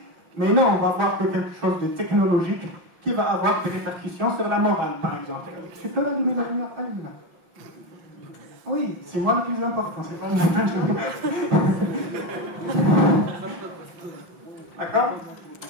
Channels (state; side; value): late; left; 5.8 ms